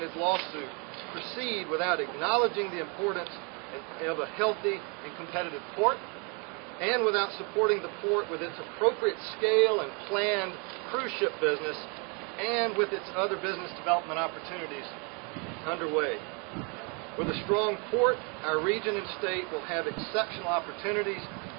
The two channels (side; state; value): left; quieter; 33.6 dB